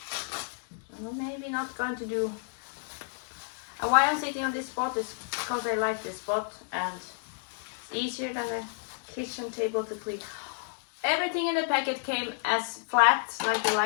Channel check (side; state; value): right; silent; digital silence